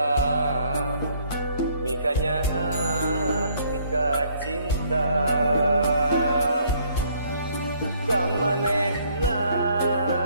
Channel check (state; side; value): inverted; both; correlation -0.64